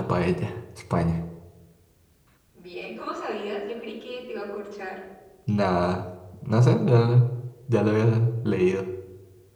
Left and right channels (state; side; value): identical; both; correlation 1.00